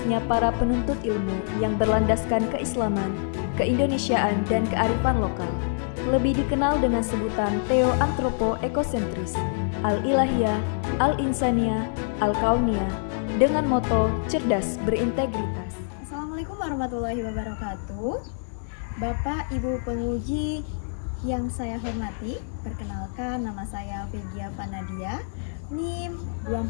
para penuntut ilmu yang berlandaskan keislaman, keindonesiaan, dan kearifan lokal. Lebih dikenal dengan sebutan Theo Antropo Ekosentris, Al-Ilahiyah, Al-Insaniyah, Al-Kauniyah, dengan moto cerdas berintegritas. Assalamualaikum warahmatullahi wabarakatuh. Bapak, Ibu penguji yang saya hormati, perkenalkan nama saya Vegia Panadia, NIM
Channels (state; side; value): silent; right; 61 dB below the other